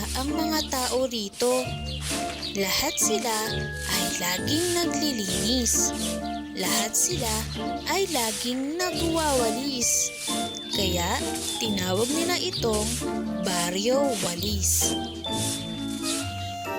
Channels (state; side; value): identical; both; correlation 1.00